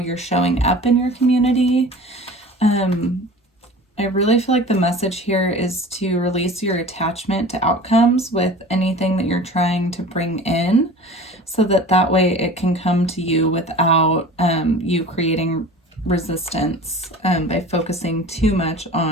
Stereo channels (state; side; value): normal; both; correlation 0.40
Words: showing up in your community. I really feel like the message here is to release your attachment to outcomes with anything that you're trying to bring in, so that way it can come to you without you creating resistance by focusing too much